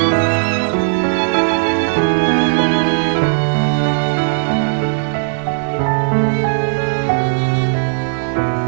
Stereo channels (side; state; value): left; silent; 69 dB below the other